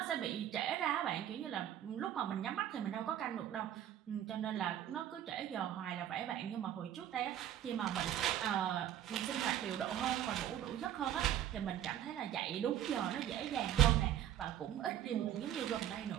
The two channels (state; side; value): quieter; left; 11.0 dB